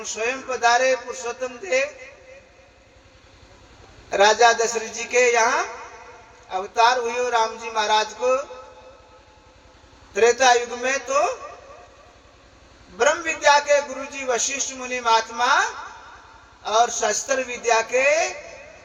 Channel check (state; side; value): identical; both; correlation 1.00